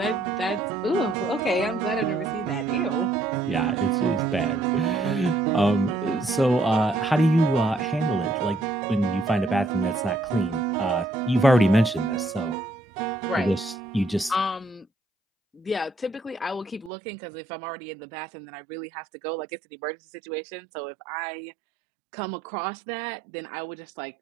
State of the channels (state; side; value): drops out; left; at 16.9 s